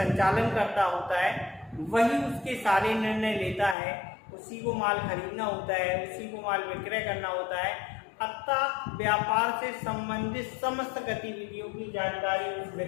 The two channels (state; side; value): drops out; right; at 3.8 s